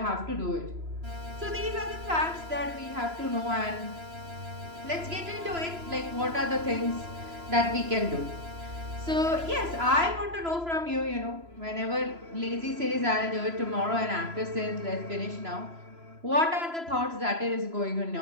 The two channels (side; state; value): left; late; 3.0 ms